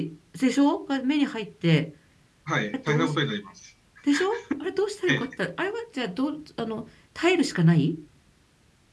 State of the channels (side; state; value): both; identical; correlation 1.00